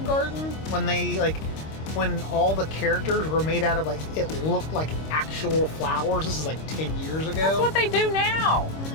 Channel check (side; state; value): right; late; 26 ms